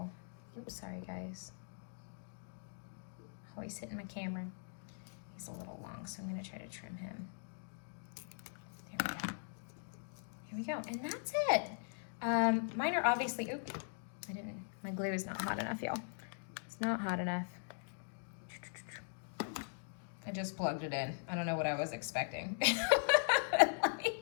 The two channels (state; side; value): silent; right; digital silence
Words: oops, sorry guys. Always hitting my camera. He's a little long, so I'm gonna try to trim him. There we go. Here we go, and that's it. Mine are obviously, oop, my glue is not hot enough, y'all. It's not hot enough. I just plugged it in. I don't know what I was expecting.